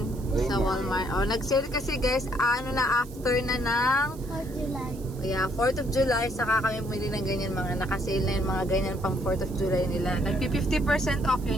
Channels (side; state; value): right; noise; hiss, 21 dB below the sound